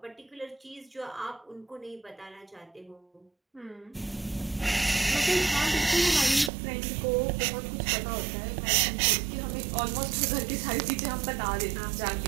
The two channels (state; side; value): drops out; left; at 6.5 s